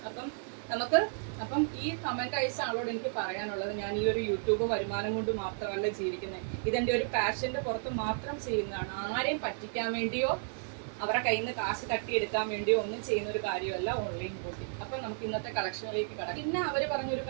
അപ്പം ഈ കമൻറ്റ് അയച്ച ആളോട് എനിക്ക് പറയാനുള്ളത്, ഞാൻ ഈ ഒരു യൂട്യൂബ് വരുമാനം കൊണ്ട് മാത്രമല്ല ജീവിക്കുന്നത്, ഇതെൻ്റെ ഒരു പാഷൻ്റെ പുറത്ത് മാത്രം ചെയ്യുന്നതാണ്. ആരെയും പറ്റിക്കാൻ വേണ്ടിയോ അവരുടെ കയ്യിൽ നിന്ന് കാശ് തട്ടിയെടുക്കാൻ വേണ്ടിയോ ഒന്നും ചെയ്യുന്ന ഒരു കാര്യമല്ല ഓൺലൈൻ ബോട്ടിങ്. അപ്പം നമുക്ക് ഇന്നത്തെ കളക്ഷനിലേക്ക് കടക്കാം. പിന്നെ അവർ പറഞ്ഞൊരു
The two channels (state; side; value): silent; left; 56 dB below the other